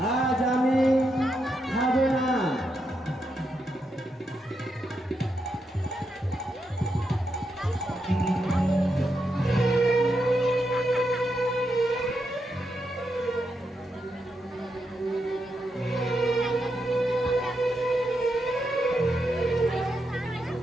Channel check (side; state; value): both; normal; correlation 0.83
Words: আজ আমি খাবো না।